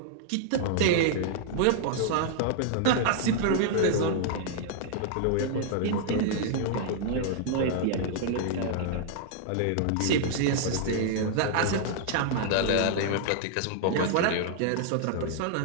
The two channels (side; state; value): both; different; correlation -0.01